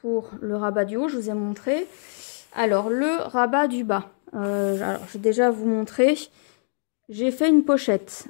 le rabat du haut, je vous ai montré. Alors le rabat du bas, alors, je vais déjà vous montrer. J'ai fait une pochette,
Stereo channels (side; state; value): right; silent; digital silence